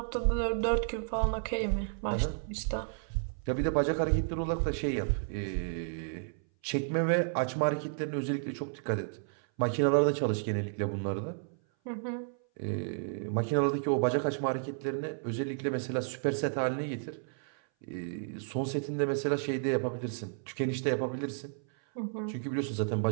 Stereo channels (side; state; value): left; silent; 56 dB below the other